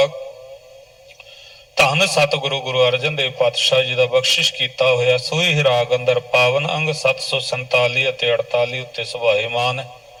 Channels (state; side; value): identical; both; correlation 1.00